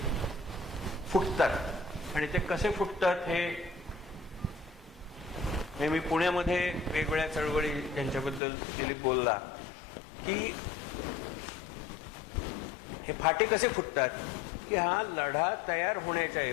फुटतात आणि ते कसे फुटतात हे मी पुण्यामध्ये वेगवेगळ्या चळवळी ज्यांच्याबद्दल दिलीप बोलला की हे फाटे कसे फुटतात की हा लढा तयार होण्याच्या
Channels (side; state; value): right; drops out; at 8.4 s